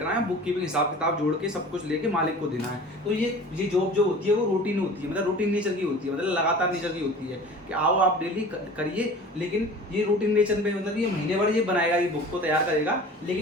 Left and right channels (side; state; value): both; normal; correlation 0.41